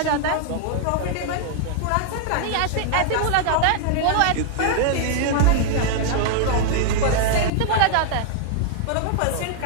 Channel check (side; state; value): both; different; correlation 0.00